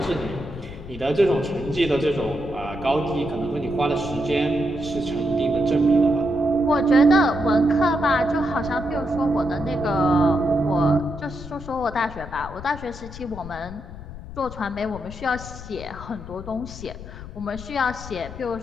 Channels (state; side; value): noise; left; rumble, 13 dB below the sound